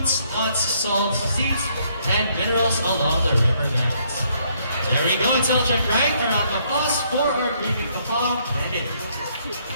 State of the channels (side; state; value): both; inverted; correlation -0.69